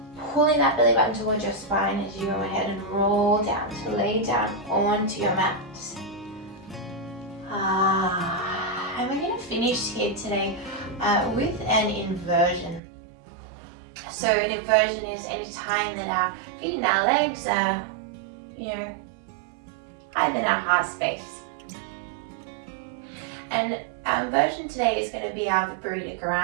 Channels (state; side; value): drops out; left; at 12.8 s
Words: pulling that belly button towards your spine as you go ahead and roll down to lay down onto your mat. And we're going to finish here today with an inversion. So an inversion is any time that our feet and our legs are, higher than our heart space. And our inversion today is going to be our Viparita